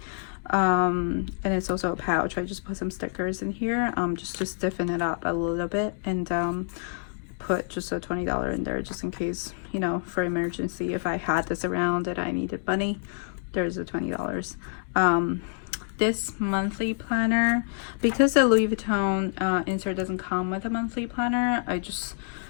And it's also a pouch. I just put some stickers in here just to stiffen it up a little bit, and put just a $20 in there just in case, you know, for emergency. If I had this around and I needed money, there's a $20. This monthly planner, because the Louis Vuitton insert doesn't come with a monthly planner, I just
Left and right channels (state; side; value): silent; right; digital silence